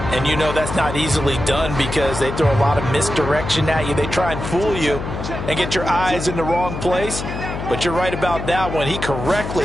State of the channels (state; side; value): noise; left; hum, 6 dB below the sound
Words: And you know that's not easily done because they throw a lot of misdirection at you. They try and fool you and get your eyes in the wrong place. But you're right about that one. He correctly